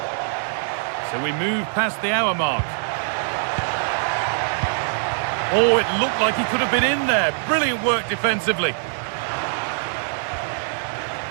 So we move past the hour mark. Oh, it looked like he could have been in there. Brilliant work defensively.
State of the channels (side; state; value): left; silent; digital silence